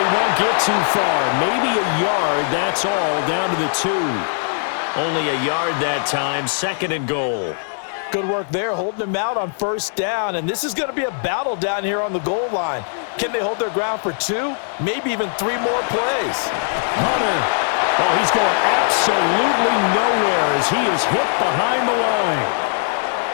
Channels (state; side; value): silent; right; digital silence